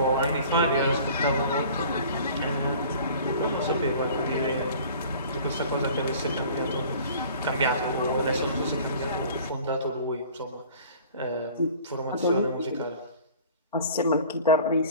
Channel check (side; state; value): both; inverted; correlation -0.46